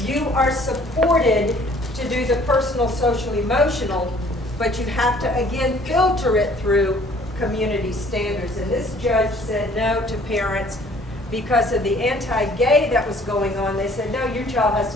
you are supported to do the personal, social, emotional, but you have to, again, filter it through community standards. And this judge said no to parents because of the anti-gay that was going on. They said, no, your child has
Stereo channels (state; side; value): normal; both; correlation 0.56